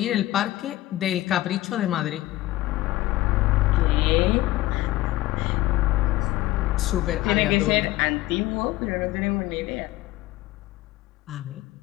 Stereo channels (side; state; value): right; quieter; 16.6 dB